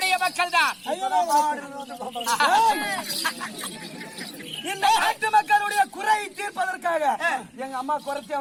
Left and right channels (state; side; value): identical; both; correlation 1.00